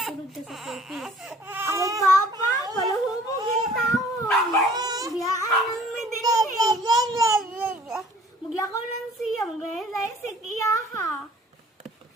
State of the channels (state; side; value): normal; both; correlation 0.52